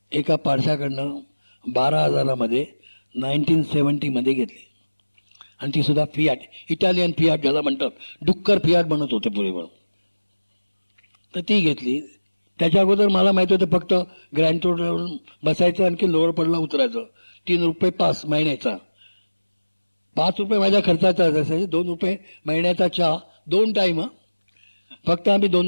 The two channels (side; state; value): both; inverted; correlation -1.00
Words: एका पारशाकडनं 12,000 मध्ये 1970 मध्ये घेतली. आणि ती सुद्धा फियाट, इटालियन फियाट ज्याला म्हणतात, डुक्कर फियाट बनत होते पूर्वी म्हणून. तर ती घेतली. त्याच्या अगोदर मला माहिती होतं फक्त ग्रँड रोडवरून बसायचं आणखी लोअर पडला उतरायचं. 3 रुपये पास महिन्याचा. 5 रुपये माझ्या खर्चाचा असायचे. 2 रुपये महिन्याचा चहा 2 टाइम. फक्त आम्ही